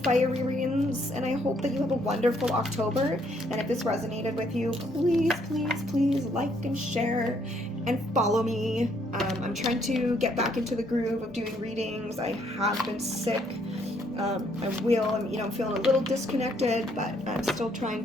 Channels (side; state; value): both; normal; correlation 0.69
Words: and I hope that you have a wonderful October. And if this resonated with you, please, please, please like and share and follow me. I'm trying to get back into the groove of doing readings. I have been sick. I'm feeling a little disconnected, but I'm still trying